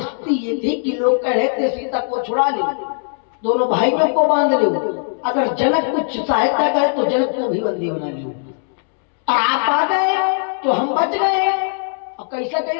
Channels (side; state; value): right; silent; 67 dB below the other